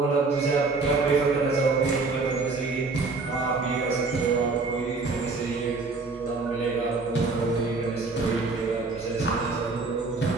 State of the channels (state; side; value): quieter; left; 3.9 dB